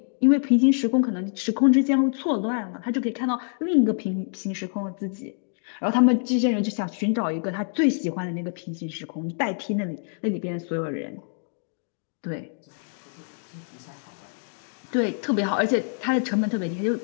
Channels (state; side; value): silent; right; 60 dB below the other